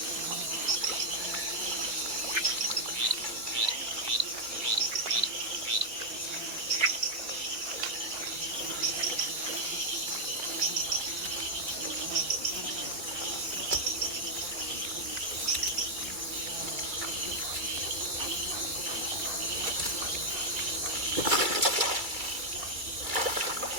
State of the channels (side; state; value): left; late; 2.3 ms